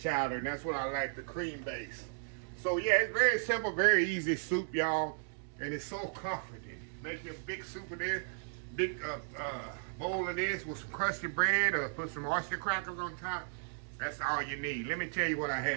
and that's what I like, the cream-based. So yeah, it's very simple, very easy soup, y'all. And it's so comforting. Make you a big soup of this, big bowl of this with some crusty bread or put some oyster crackers on top. That's all you need. Let me tell you what I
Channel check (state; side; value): silent; left; digital silence